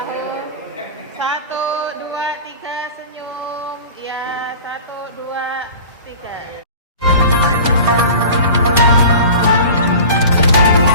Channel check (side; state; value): both; inverted; correlation -0.39